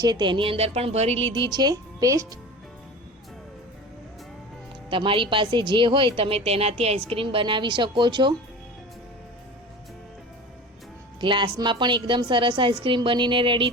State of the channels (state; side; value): normal; both; correlation 0.34